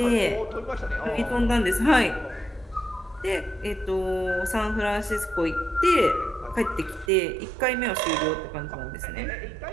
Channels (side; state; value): left; drops out; at 7.1 s